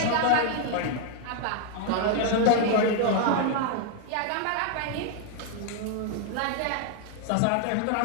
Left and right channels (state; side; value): different; both; correlation 0.00